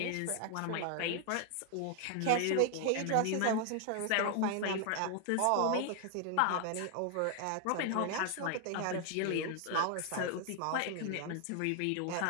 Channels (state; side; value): different; both; correlation 0.00